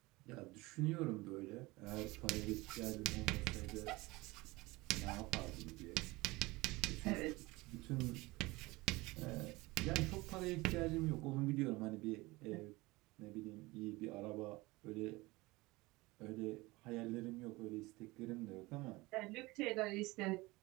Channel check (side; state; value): left; quieter; 21.9 dB